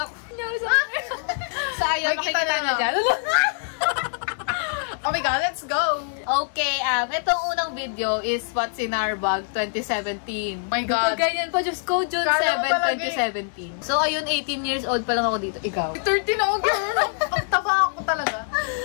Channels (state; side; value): silent; right; digital silence